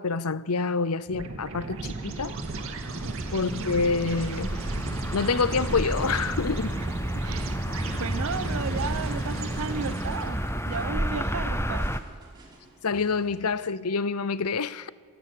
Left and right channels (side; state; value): both; normal; correlation 0.15